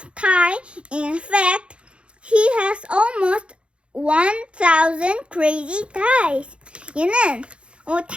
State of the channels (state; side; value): late; left; 0.058 ms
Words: Ty. In fact, he has almost 1,000 crazy ties. 얘는